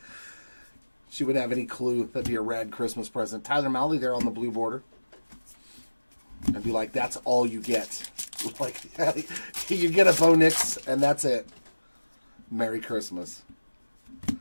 She wouldn't have any clue. That'd be a rad Christmas present. Tyler Malley there on the blue border. I'd be like, that's all you get. Like, you get a Bo Nix, and that's it. Merry Christmas.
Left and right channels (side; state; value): both; inverted; correlation -1.00